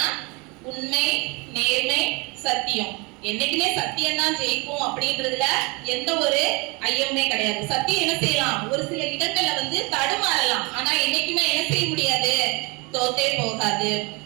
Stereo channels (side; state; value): left; quieter; 28.2 dB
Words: உண்மை, நேர்மை, சத்தியம். என்னைக்குமே சத்தியம் தான் ஜெயிக்கும் அப்படின்றதுல எந்த ஒரு ஐயமே கிடையாது. சத்தியம் என்ன செய்யலாம், ஒரு சில இடங்கள்ல வந்து தடுமாறலாம், ஆனா என்னைக்குமே என்ன செய்ய முடியாது, தோத்தே போகாது.